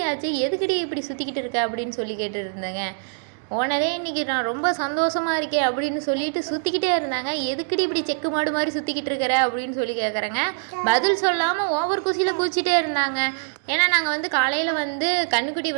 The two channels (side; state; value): left; silent; digital silence